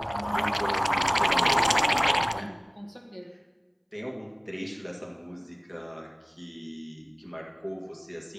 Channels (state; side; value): identical; both; correlation 1.00